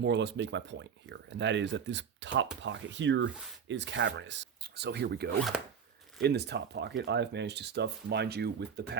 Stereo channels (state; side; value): quieter; left; 7.1 dB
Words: or less make my point here, and that is that this top pocket here is cavernous. So here we go. In this top pocket, I've managed to stuff, mind you, with the